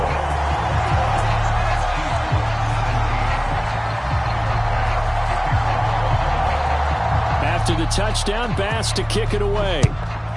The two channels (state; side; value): identical; both; correlation 1.00